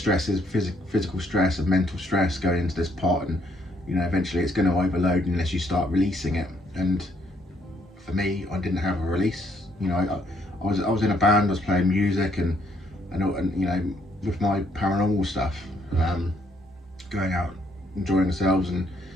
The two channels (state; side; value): normal; both; correlation 0.70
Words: is physical stress and mental stress going into this pot, and eventually it's going to overload unless you start releasing it. And for me, I didn't have a release. I was in a band, I was playing music, and with my paranormal stuff, going out, enjoying ourselves, and